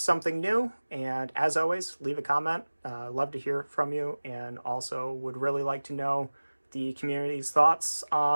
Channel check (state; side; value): inverted; both; correlation -1.00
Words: new. And as always, leave a comment. Love to hear from you, and also would really like to know the community's thoughts